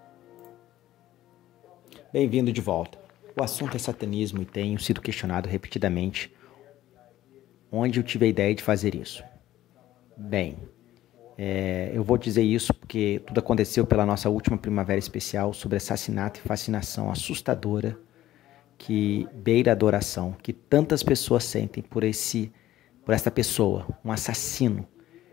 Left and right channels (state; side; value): quieter; right; 14.2 dB